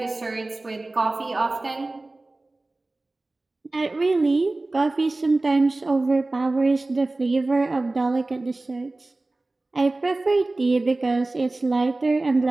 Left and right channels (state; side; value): quieter; left; 3.0 dB